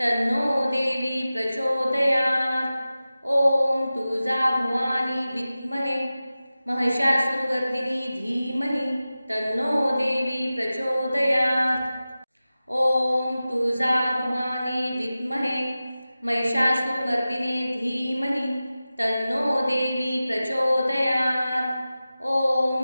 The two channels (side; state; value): both; inverted; correlation -0.95